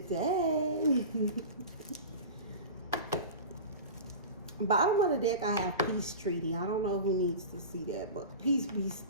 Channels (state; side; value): inverted; both; correlation -0.31